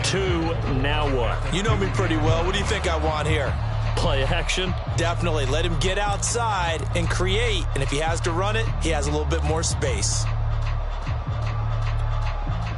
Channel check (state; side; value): identical; both; correlation 1.00